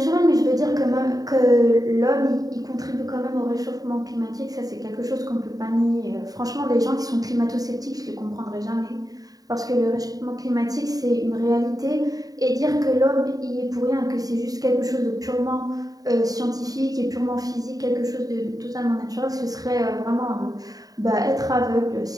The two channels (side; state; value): left; late; 0.18 ms